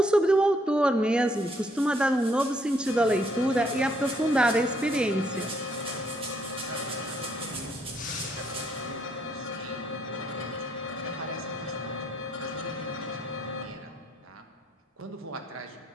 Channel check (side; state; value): both; normal; correlation 0.70